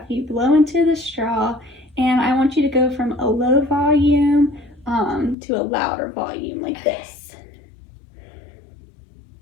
you blow into the straw, and I want you to go from a low volume to a louder volume like this.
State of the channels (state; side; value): drops out; right; at 5.4 s